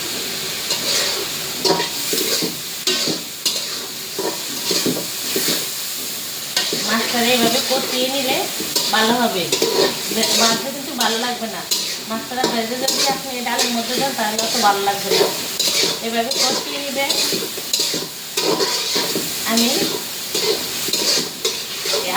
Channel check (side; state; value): both; identical; correlation 1.00